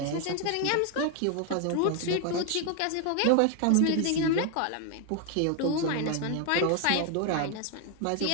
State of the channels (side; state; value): both; different; correlation 0.00